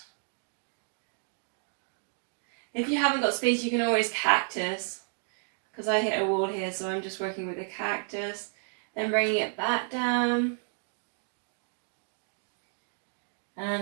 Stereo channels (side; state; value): left; silent; 57 dB below the other